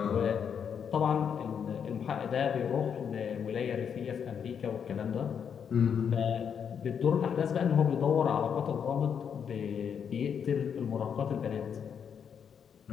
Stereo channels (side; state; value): right; quieter; 7.5 dB